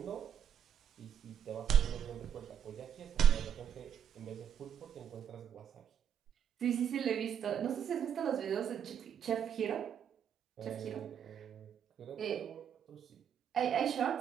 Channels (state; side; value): quieter; left; 8.6 dB